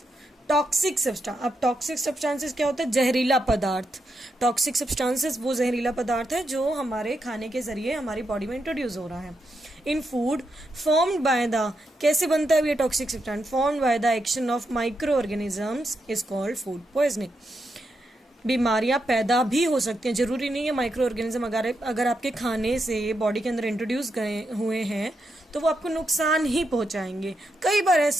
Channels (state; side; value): normal; both; correlation 0.83